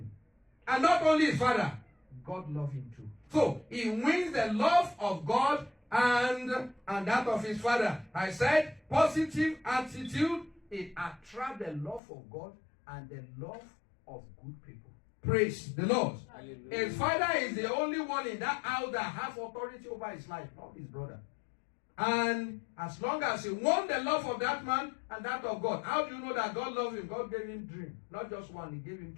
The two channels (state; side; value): drops out; right; at 12.0 s